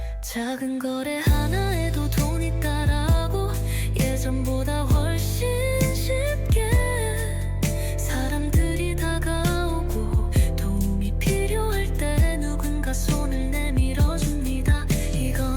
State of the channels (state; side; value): identical; both; correlation 1.00